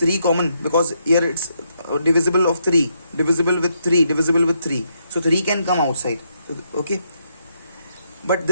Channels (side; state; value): both; inverted; correlation -0.77